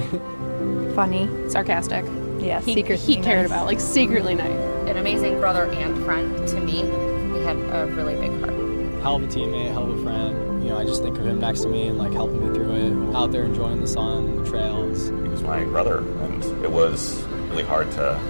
Funny. Sarcastic. Yeah, He cared about, like, secretly nice. An amazing brother and friend to me. He had a really big heart. Hell of a teammate, hell of a friend. You know, I just think of him next to me and like helping me through it, out there enjoying the sun, the trails. He was my brother, and it was really hard to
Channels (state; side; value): inverted; both; correlation -1.00